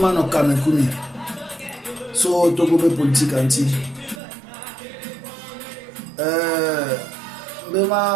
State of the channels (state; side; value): drops out; left; at 4.2 s